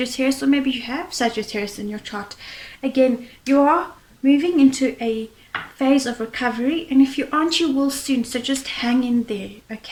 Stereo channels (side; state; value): both; identical; correlation 1.00